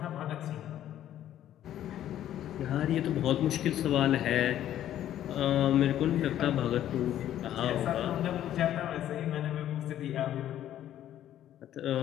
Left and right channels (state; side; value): quieter; right; 11.8 dB